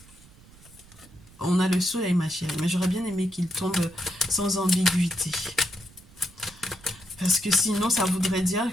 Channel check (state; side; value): noise; right; rumble, 24 dB below the sound